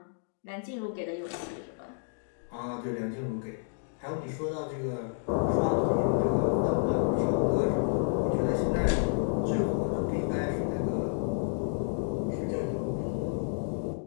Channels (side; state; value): right; silent; digital silence